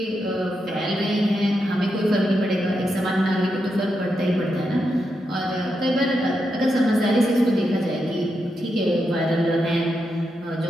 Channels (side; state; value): both; normal; correlation 0.85